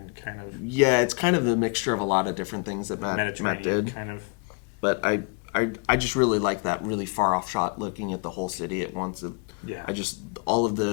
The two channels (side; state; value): right; quieter; 33.4 dB